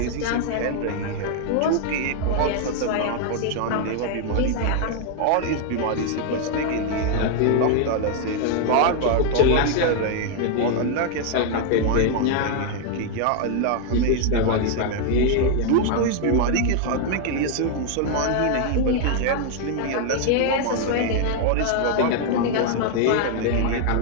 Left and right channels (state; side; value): different; both; correlation 0.00